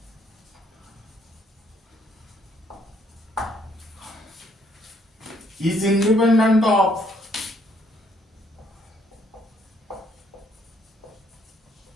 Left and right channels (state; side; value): normal; both; correlation 0.68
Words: is independent of